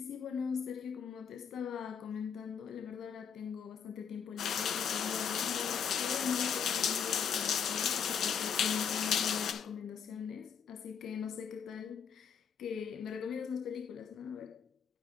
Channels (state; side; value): quieter; right; 7.3 dB